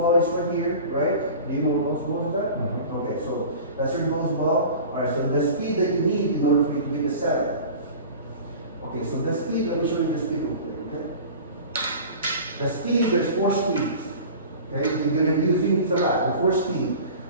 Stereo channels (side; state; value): both; inverted; correlation -0.39